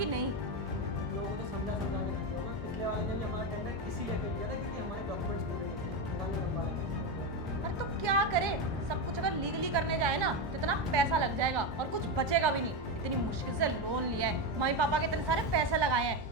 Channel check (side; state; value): both; normal; correlation 0.12